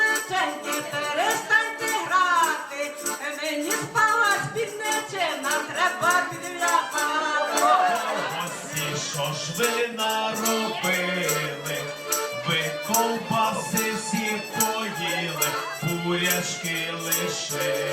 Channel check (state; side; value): identical; both; correlation 1.00